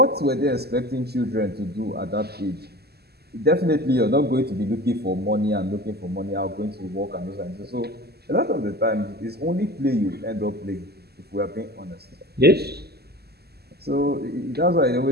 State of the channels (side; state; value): left; late; 0.46 ms